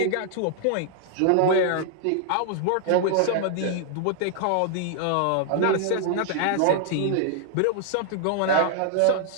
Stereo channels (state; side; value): different; both; correlation 0.00